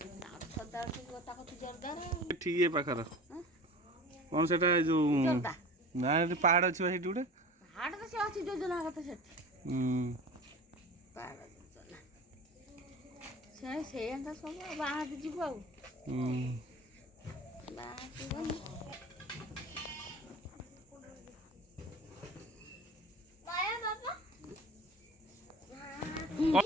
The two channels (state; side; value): normal; both; correlation 0.37